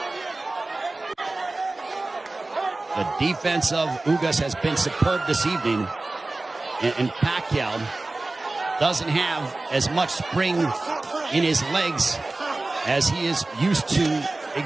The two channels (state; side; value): quieter; left; 3.1 dB